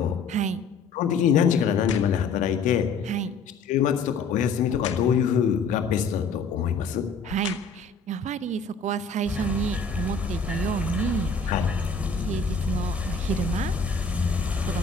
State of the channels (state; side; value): quieter; right; 4.1 dB